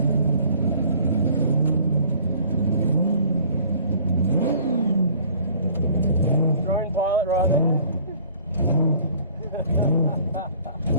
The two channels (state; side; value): inverted; both; correlation -0.53